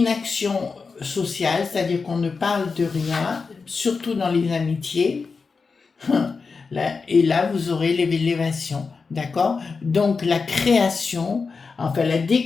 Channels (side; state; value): right; quieter; 4.7 dB